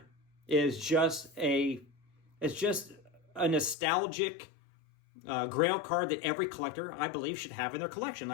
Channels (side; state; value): right; drops out; at 3.8 s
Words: is just a nostalgic grail card that every collector, I believe, should have in their collection.